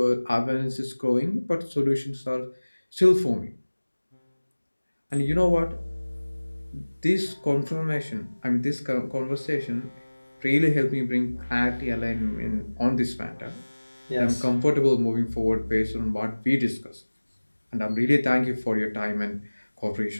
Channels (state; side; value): inverted; both; correlation -1.00